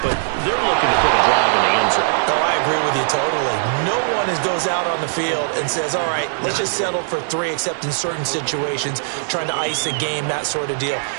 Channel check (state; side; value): silent; left; digital silence